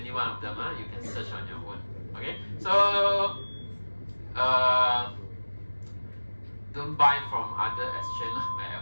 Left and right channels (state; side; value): inverted; both; correlation -1.00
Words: one of them. You can search on your own. Okay, so don't buy from other exchange. My